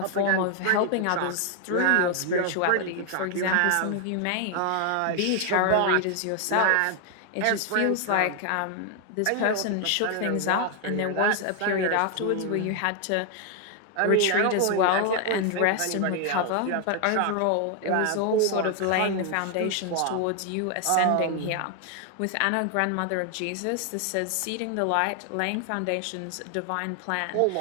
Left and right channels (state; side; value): different; both; correlation 0.00